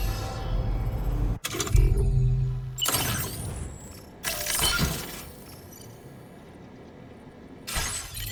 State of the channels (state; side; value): identical; both; correlation 1.00